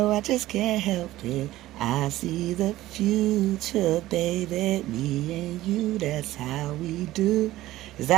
I just can't help it. I see the future, baby. Me and you, that's how we do. Is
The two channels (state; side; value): quieter; left; 15.9 dB